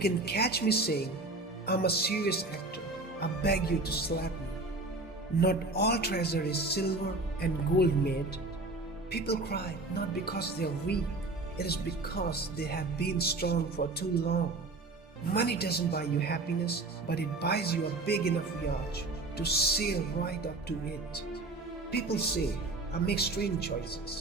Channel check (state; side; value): quieter; left; 3.2 dB